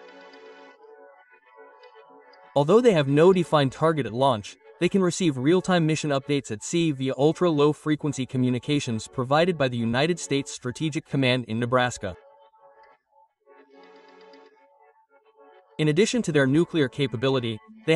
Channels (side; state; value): both; identical; correlation 1.00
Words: Although they have no defined target at launch, they can receive real-time mission updates at sea via ultra-low-frequency communications provided by the United States Strategic Command in Nebraska. In addition to their nuclear capability, they